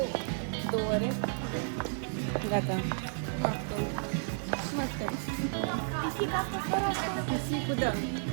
2 ore. Gata. Mă aștept. Pisica asta fără asta. Pisicul, da.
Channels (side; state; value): left; silent; 56 dB below the other